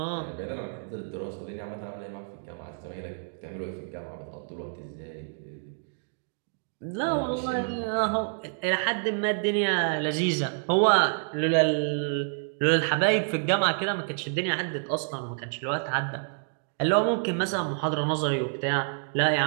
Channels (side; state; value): left; silent; digital silence